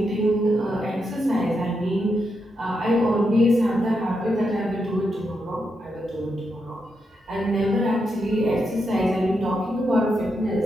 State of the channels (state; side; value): normal; both; correlation 0.84